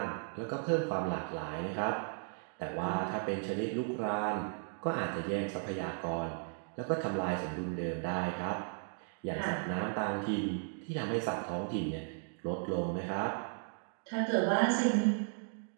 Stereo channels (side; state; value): left; silent; 54 dB below the other